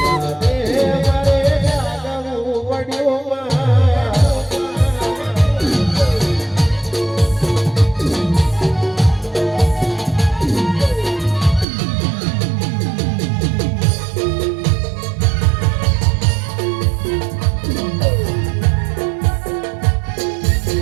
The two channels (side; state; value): left; drops out; at 11.7 s